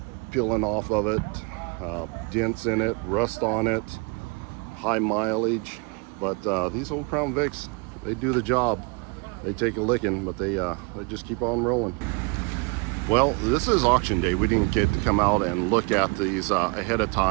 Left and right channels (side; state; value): left; quieter; 30.6 dB